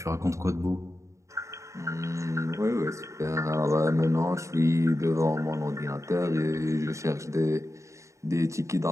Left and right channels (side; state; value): left; late; 0.15 ms